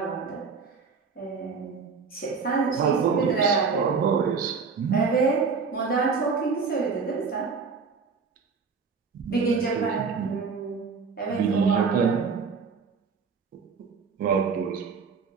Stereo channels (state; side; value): quieter; left; 5.2 dB